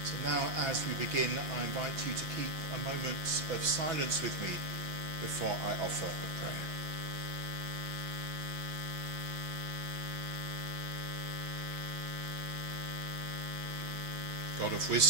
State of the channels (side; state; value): left; late; 5.7 ms